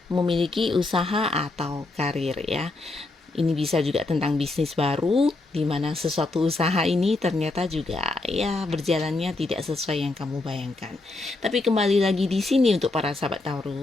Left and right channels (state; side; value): quieter; right; 3.1 dB